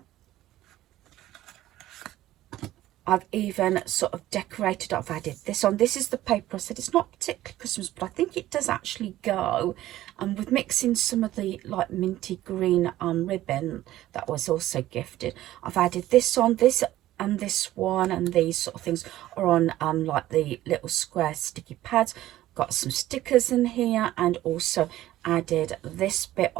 I've even sort of decorated. I've added this on. This is the paper. I said it's not particularly Christmas, but I think it does actually go. And with mixing some of the like minty green ribbon that was also gifted, I've added this on. This and this one and these sort of things are on like the little square sticky pads. Got some stickers in here, and also added this bit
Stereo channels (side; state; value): left; quieter; 14.7 dB